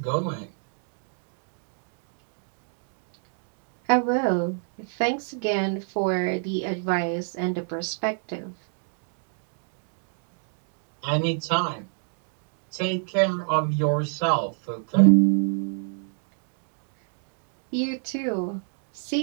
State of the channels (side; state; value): left; silent; 60 dB below the other